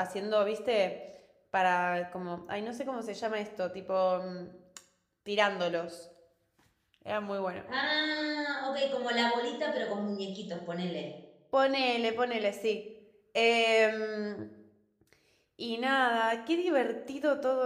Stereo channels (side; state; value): both; identical; correlation 1.00